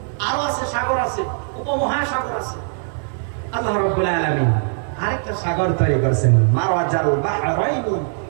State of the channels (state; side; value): silent; left; digital silence